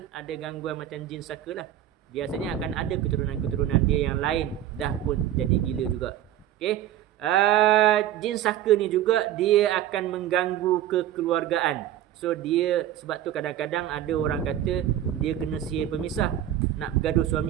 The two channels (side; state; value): left; quieter; 12.0 dB